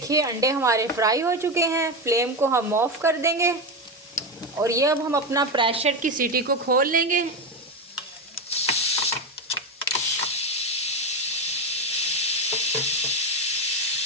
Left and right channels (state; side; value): normal; both; correlation 0.14